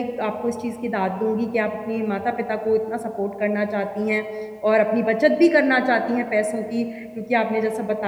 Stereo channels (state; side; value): identical; both; correlation 1.00